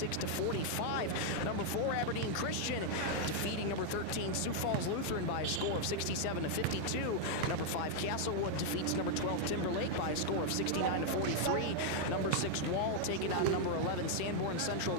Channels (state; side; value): different; both; correlation 0.00